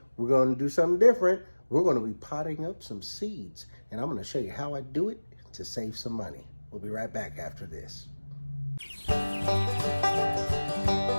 we're going to do something different. We're going to be potting up some seeds, and I'm going to show you how I do it to save some money. We'll be right back after this.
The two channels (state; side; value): inverted; both; correlation -1.00